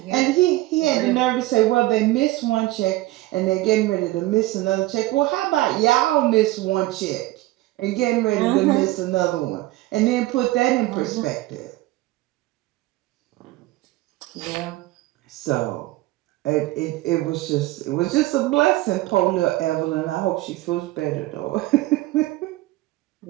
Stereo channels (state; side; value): quieter; left; 18.0 dB